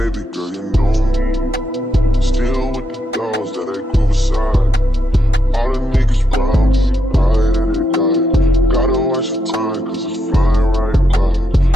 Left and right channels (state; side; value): normal; both; correlation 0.81